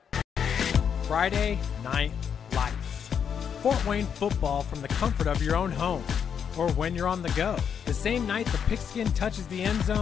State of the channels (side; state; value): right; quieter; 7.6 dB